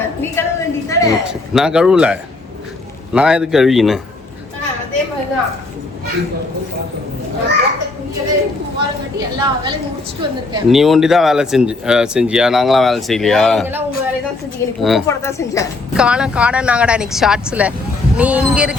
நான் கழுவல, நான் எதுக்கு கழுவினேன்? நீ ஒண்டி தான் வேலை செஞ்சியா? நாங்களாம் வேலை செய்யலையா? காணாங்கடா இன்னைக்கு ஷார்ட்ஸ்ல. நீ இங்க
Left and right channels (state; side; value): quieter; right; 3.4 dB